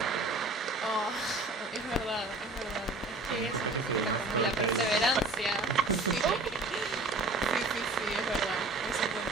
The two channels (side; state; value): left; quieter; 3.1 dB